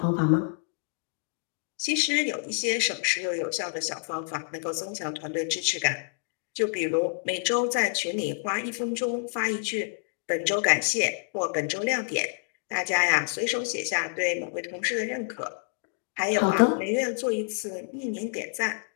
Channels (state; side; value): silent; right; digital silence